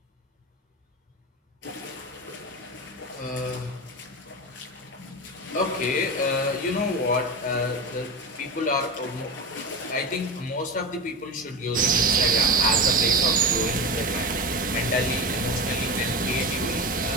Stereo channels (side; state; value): both; normal; correlation 0.24